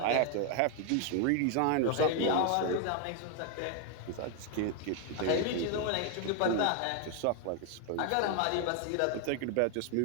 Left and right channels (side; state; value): both; different; correlation 0.01